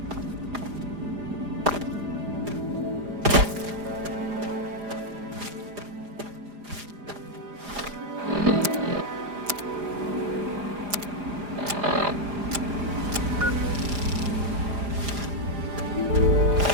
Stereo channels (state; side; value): late; left; 5.0 ms